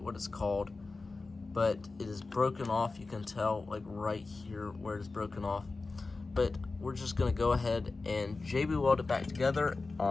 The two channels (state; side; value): quieter; right; 3.7 dB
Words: what it's called, but it is broken off. You can tell like right here where it is broken off. But we're just gonna go ahead and JB weld it back together,